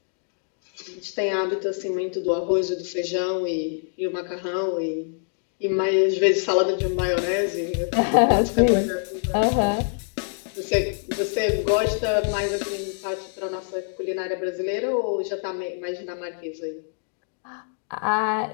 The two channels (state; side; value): silent; right; digital silence